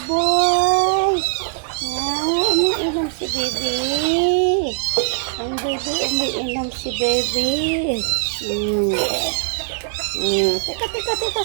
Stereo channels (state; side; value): silent; left; digital silence